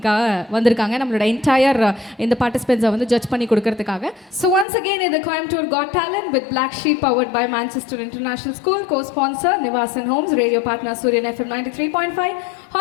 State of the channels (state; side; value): drops out; right; at 4.7 s